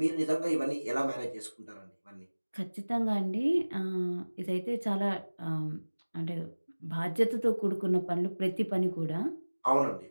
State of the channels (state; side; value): inverted; both; correlation -1.00